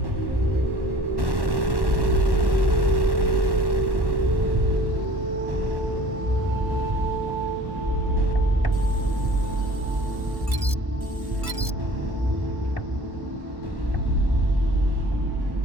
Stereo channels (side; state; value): left; late; 1.1 ms